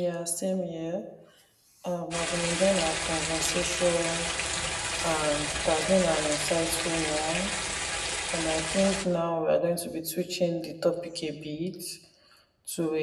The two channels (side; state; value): both; identical; correlation 1.00